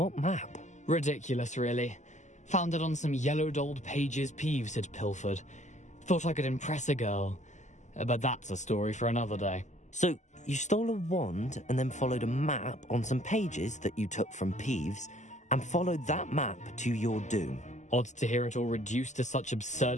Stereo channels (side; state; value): right; late; 0.34 ms